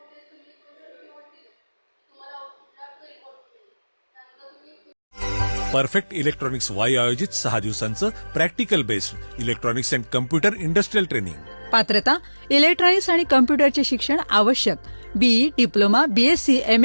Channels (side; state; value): both; inverted; correlation -1.00